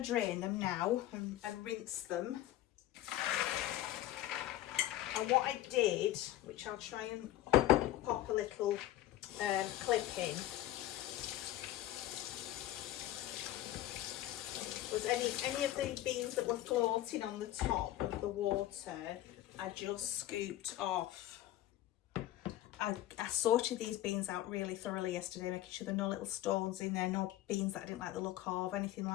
drain them now and rinse them. And what I did, which I'll try and pop a little clip in, was any of the beans that were floating on the top of the water, I just scooped off. I sorted these beans out really thoroughly yesterday, making sure there are no little stones in there, no beans that I didn't like the look of, anything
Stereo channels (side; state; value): right; quieter; 14.3 dB